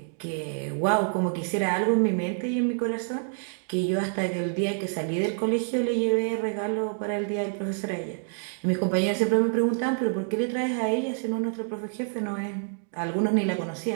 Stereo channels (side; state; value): left; silent; 60 dB below the other